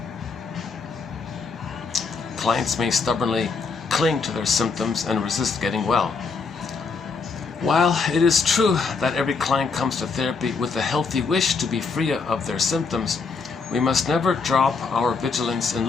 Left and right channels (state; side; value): quieter; right; 4.8 dB